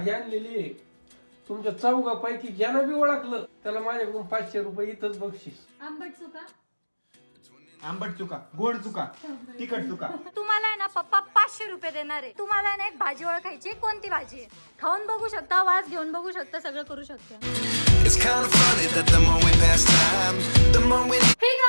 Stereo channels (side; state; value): both; inverted; correlation -1.00